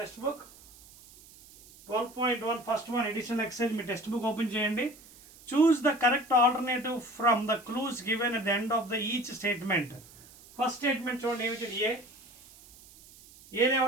12.1 first one additional exercise, me text book open చేయండి. Choose the correct alternative from the clues given at the end of the each statement. First statement చూడండి, ఏమి ఇచ్చాడు?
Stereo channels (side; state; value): right; noise; hiss, 22 dB below the sound